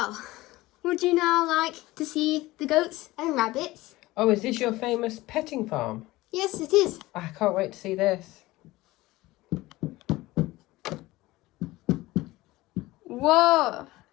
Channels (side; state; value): right; quieter; 18.9 dB